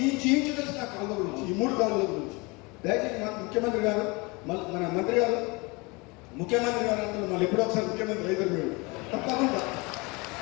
ఇంచు తెలుసు నా కాలువ గురించి, ఈ 3 కాలువల గురించి. దయచేసి ముఖ్యమంత్రి గారు మన మంత్రి గారు ముఖ్యమంత్రి గారు అంటే మళ్ళీ ఎప్పుడో ఒకసారి ముఖ్యమంత్రి అయితే మీరు తప్పకుండా.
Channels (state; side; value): quieter; right; 26.7 dB